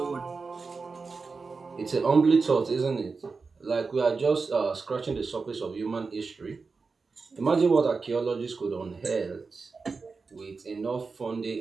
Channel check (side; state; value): left; quieter; 4.5 dB